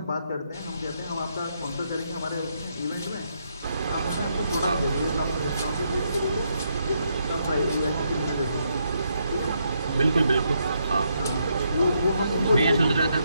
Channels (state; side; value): inverted; both; correlation -0.77